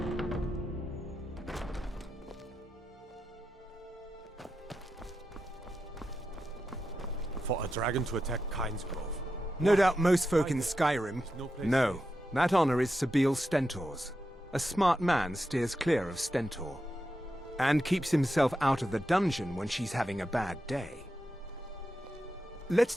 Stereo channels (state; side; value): normal; both; correlation 0.88